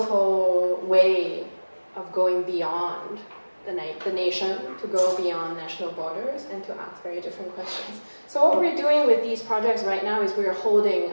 way of going beyond the nation, to go beyond national borders and to ask very different questions. So what we're doing with these projects right now is we're holding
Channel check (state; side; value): inverted; both; correlation -1.00